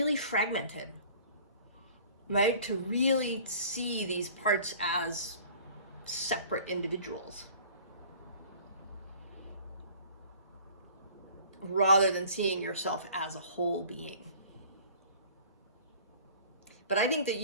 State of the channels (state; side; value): inverted; both; correlation -0.48